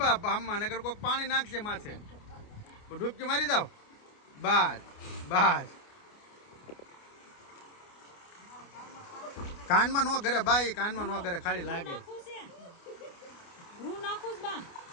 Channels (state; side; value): late; right; 29 ms